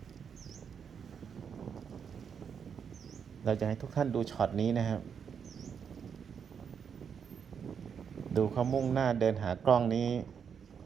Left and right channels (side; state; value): left; quieter; 7.1 dB